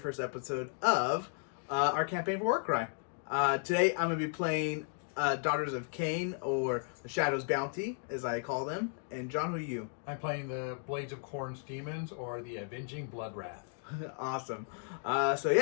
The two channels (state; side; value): silent; right; 55 dB below the other